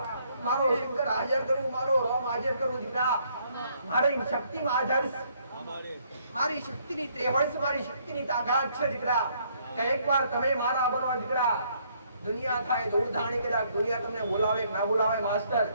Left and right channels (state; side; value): inverted; both; correlation -0.68